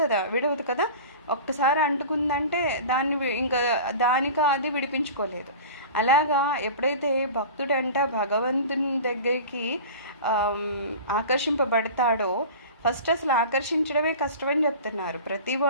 విడవదు కదా. ఒక్కసారి అంటుకుందంటే ఇంకా దానికి అది విడిపించుకోలేదు. అలాగా ఎప్పుడైతే భక్తుడంట భగవంతుని దగ్గరికి ఆకర్షింపబడతాడో, ఫస్ట్ అసలు ఆకర్షించడమే కష్టమని చెప్తున్నారు.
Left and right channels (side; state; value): both; inverted; correlation -0.36